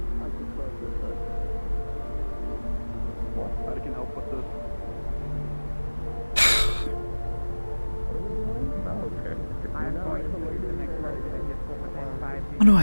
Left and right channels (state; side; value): inverted; both; correlation -1.00